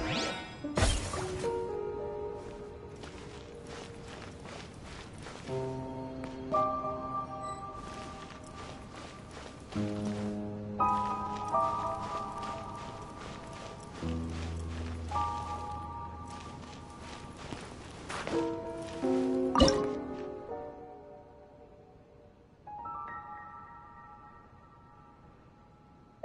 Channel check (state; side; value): identical; both; correlation 1.00